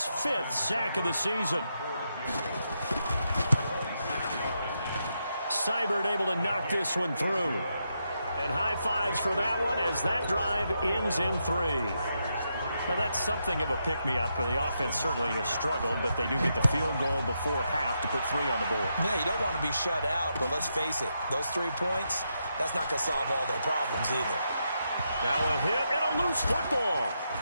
5th sack of the season. Seibert able to knock this one through. And high fives for that one as that drive ends in 3. Now, that's something of a pick-me-up. The offense certainly has struggled, but they do get the field goal before half to put 3 on the board. Yeah, you don't want to be shut out, but let's face it, those 3 points, that's not going to solve all their problems either. Now a hit and a loose football.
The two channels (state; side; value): inverted; both; correlation -0.82